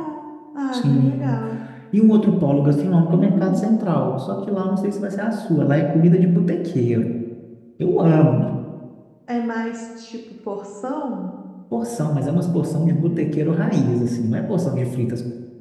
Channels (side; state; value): both; identical; correlation 1.00